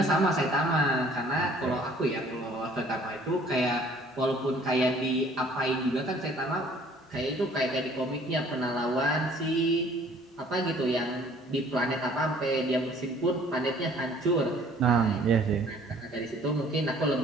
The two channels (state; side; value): normal; both; correlation 0.55